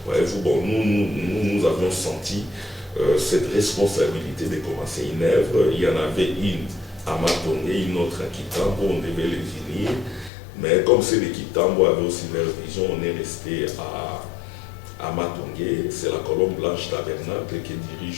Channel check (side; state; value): right; drops out; at 10.3 s